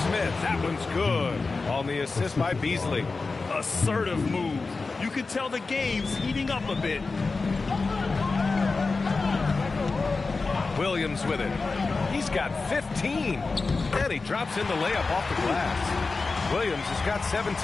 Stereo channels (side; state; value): right; quieter; 4.0 dB